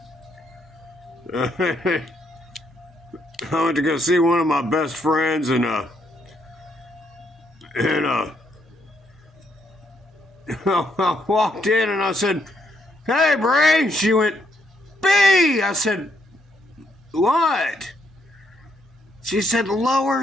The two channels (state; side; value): normal; both; correlation 0.74